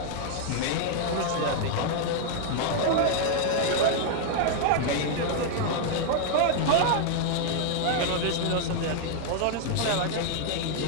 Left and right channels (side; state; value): both; different; correlation 0.00